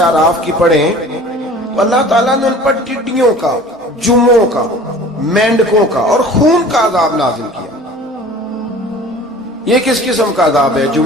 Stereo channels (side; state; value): both; normal; correlation 0.44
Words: اعراف کی پڑھیں تو اللہ تعالیٰ نے ان پر ٹڈیوں کا، جموں کا، مینڈکوں کا اور خون کا عذاب نازل کیا۔ یہ کس قسم کا عذاب ہے؟